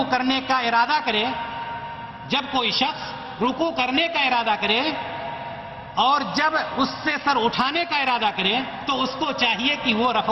کرنے کا ارادہ کرے، جب کوئی شخص رکوع کرنے کا ارادہ کرے اور جب اس سے سر اٹھانے کا ارادہ کرے تو اس کو چاہیے کہ وہ رفع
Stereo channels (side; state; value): both; identical; correlation 1.00